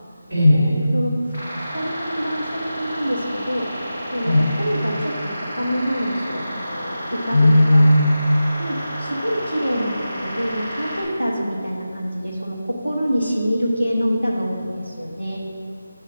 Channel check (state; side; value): inverted; both; correlation -0.94